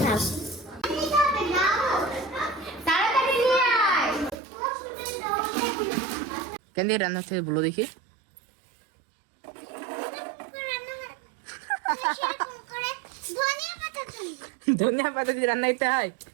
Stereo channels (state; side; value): drops out; left; at 4.4 s